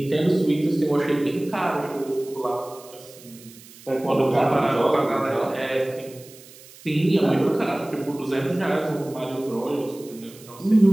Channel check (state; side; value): noise; right; hiss, 21 dB below the sound